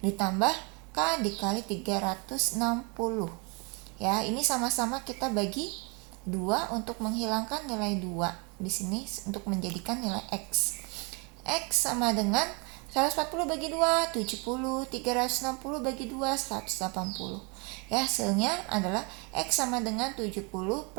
ditambah K dikali 360 ya. Ini sama-sama kita bagi 2 untuk menghilangkan nilai 2 di sini untuk menjadikan nilai X. X sama dengan 140 bagi 2 70, 360 bagi 2 180 ya. Hasilnya adalah X sama dengan 70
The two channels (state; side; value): quieter; left; 32.2 dB